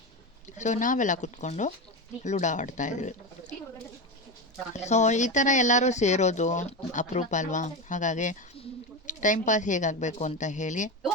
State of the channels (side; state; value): both; normal; correlation 0.18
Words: ಸೊ ನಾವೆಲ್ಲ ಕೂತ್ಕೊಂಡು ಲೂಡೋ ಆಡ್ತಾಯಿದ್ವಿ. ಸೊ ಈ ಥರ ಎಲ್ಲರೂ ಸೇರೋದು ಅಪರೂಪ ಅಲ್ವಾ. ಹಾಗಾಗಿ ಟೈಮ್ ಪಾಸ್ ಹೇಗಾಗಬೇಕು ಅಂತ ಹೇಳಿ